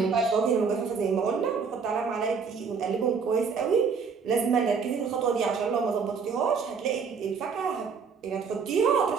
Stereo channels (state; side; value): quieter; left; 5.7 dB